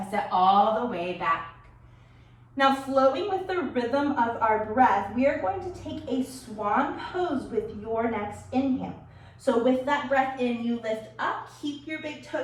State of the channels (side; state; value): both; identical; correlation 1.00